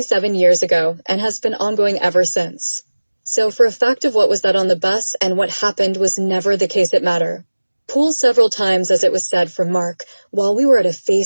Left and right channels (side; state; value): both; inverted; correlation -1.00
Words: years ago and has been ongoing ever since. So for a fact of what was that on the bus and what happened was never the case it matter. Pulled several times, as it was said from Mark, while we were at a